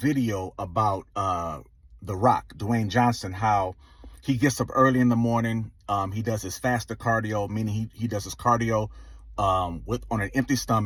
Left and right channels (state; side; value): identical; both; correlation 1.00